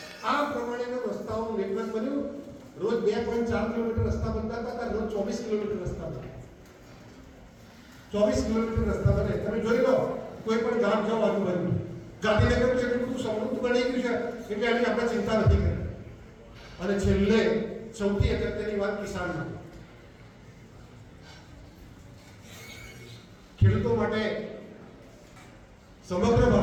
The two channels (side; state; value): both; identical; correlation 1.00